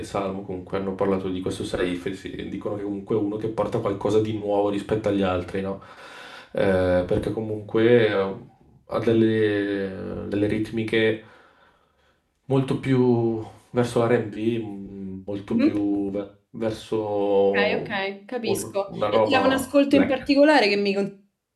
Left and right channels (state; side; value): identical; both; correlation 1.00